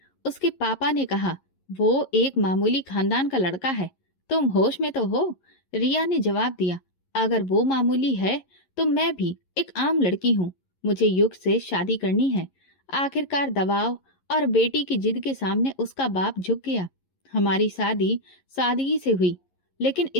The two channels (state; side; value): late; right; 11 ms